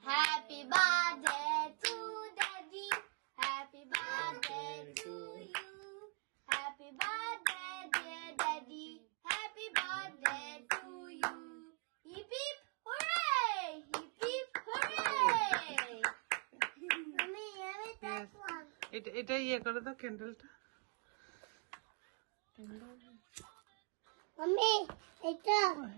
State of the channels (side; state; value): left; quieter; 34.9 dB